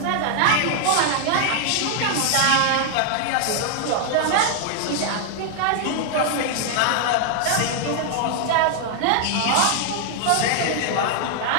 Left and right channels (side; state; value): both; different; correlation 0.00